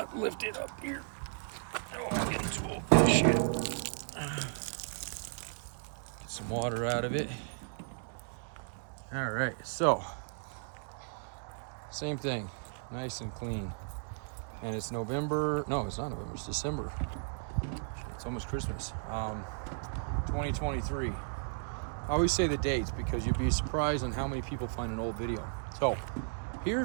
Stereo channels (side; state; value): left; silent; digital silence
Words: lift it up here. Oh, I'm getting too old for this shit. Get some water out of it. All right, so same thing, nice and clean. And it's November, no, it's not November, it's December. It's almost Christmas. 2023. I always say the dates because you'd be surprised on how many people find an old video. So